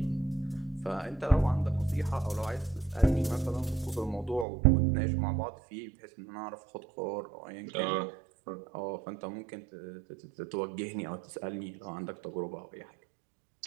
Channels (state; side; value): drops out; left; at 4.5 s